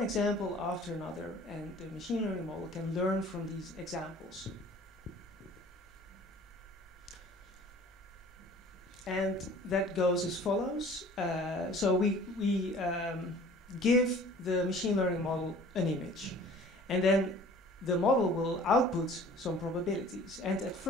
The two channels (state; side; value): normal; both; correlation 0.48